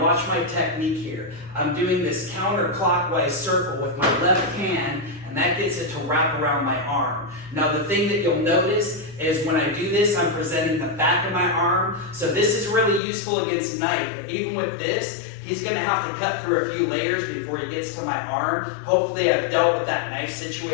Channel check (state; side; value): drops out; right; at 13.0 s